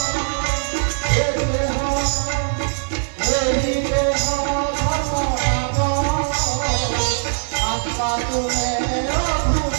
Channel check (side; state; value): left; silent; digital silence